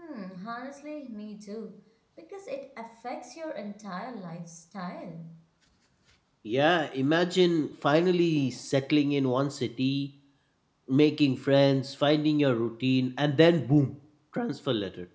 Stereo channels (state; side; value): identical; both; correlation 1.00